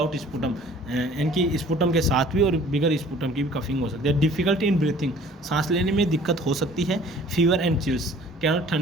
स्पुटम, इनकी स्पुटम के साथ भी और बिगर स्पुटम की भी कफिंग हो सकती है। डिफ़िकल्टी इन ब्रीथिंग, सांस लेने में दिक्कत हो सकती है। फीवर एंड चिल्स, क्या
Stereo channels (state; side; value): normal; both; correlation 0.51